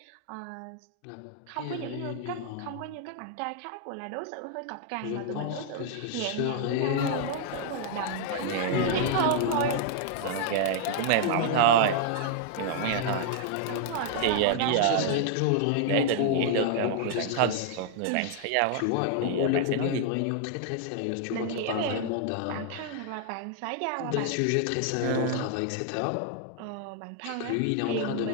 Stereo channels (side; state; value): both; different; correlation -0.01